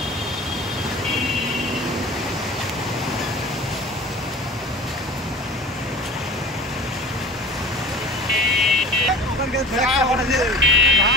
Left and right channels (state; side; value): normal; both; correlation 0.39